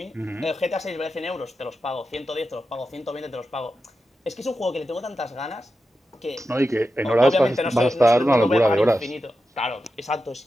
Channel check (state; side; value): normal; both; correlation 0.90